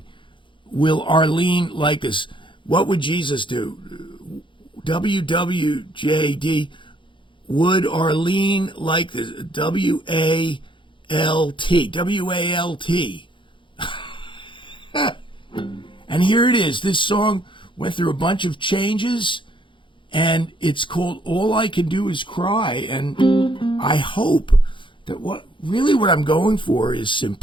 will Arlene like this? What would Jesus do? WWJD, would Arlene like this? WALT. WALT. And here it is. This song went through a bunch of changes, and it's called All I Can Do Is Cry. And I hope that what I'm going for is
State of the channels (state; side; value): late; right; 0.24 ms